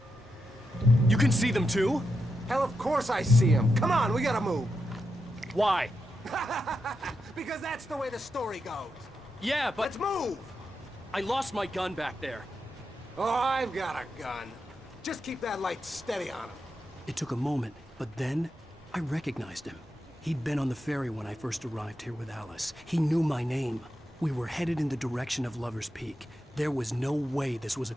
You can see them too? Hell, of course I see them. Come on, we gotta move. Why? Because that's the way the story goes. Yeah, but... Let's move! I lost my gun back there. Oh, I've got a gun. Just keep that light steady on him. It took a moment, but then I recognized him. He'd been on the ferry when I first arrived here with Alice. He knew my name. We were headed in the direction of Lover's Peak. There was no way this was a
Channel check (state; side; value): normal; both; correlation 0.86